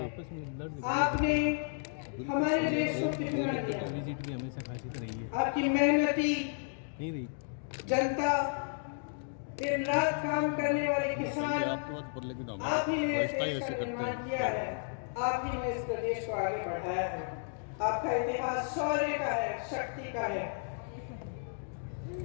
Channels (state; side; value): silent; right; digital silence